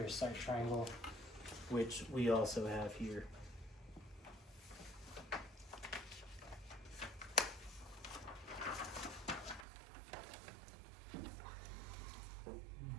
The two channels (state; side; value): drops out; left; at 9.7 s